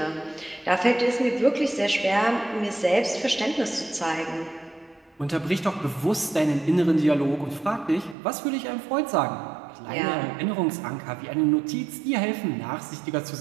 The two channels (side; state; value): left; drops out; at 8.2 s